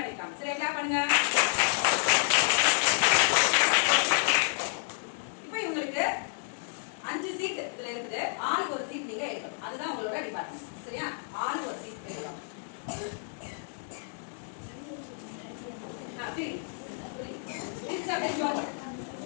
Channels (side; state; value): right; silent; digital silence